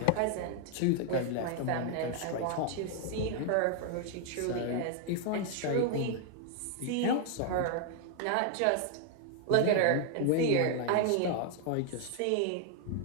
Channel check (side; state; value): both; different; correlation 0.00